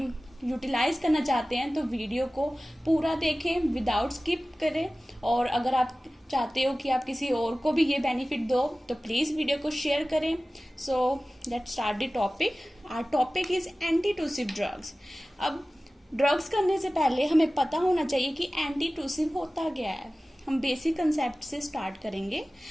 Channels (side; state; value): both; normal; correlation 0.97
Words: यूटिलाइज करना चाहते हैं तो वीडियो को पूरा देखें विदाउट स्किप करें। और अगर आप चाहते हो कि आप किसी और को भी ये बेनिफिट दो तो प्लीज़ वीडियो को शेयर करें। So let's start the topic. Our topic is antitussive drugs. अब ड्रग्स करने से पहले हमें पता होना चाहिए कि एंटीटूसिव होता क्या है। हम बेसिक कंसेप्ट से स्टार्ट करेंगे।